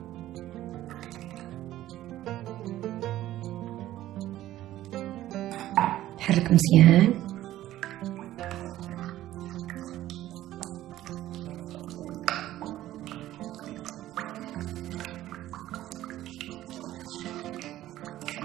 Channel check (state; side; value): quieter; left; 14.2 dB